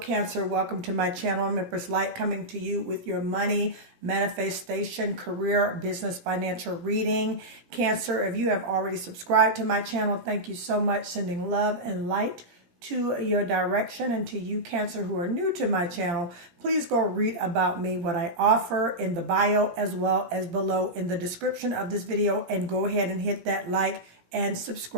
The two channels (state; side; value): late; left; 17 ms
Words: Welcome to my channel. I'm Empress Light, coming to you with your money, manifestation, career, business, financial reading. Cancer, if you have already subscribed to my channel, thank you so much. Sending love and light to your direction. And to you, Cancer, who are new to my channel, please go read about me, what I offer in the bio as well as below in the description of this video, and go ahead and hit that like and